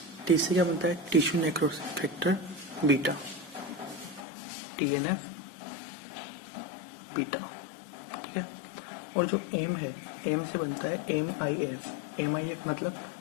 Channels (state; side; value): drops out; right; at 4.2 s